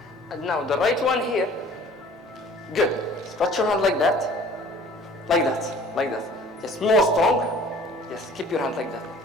And now the right one here. Good. Stretch your hand like that. Like that. Like that. Yes, more strong. Yes, keep your hand like that.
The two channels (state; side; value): normal; both; correlation 0.50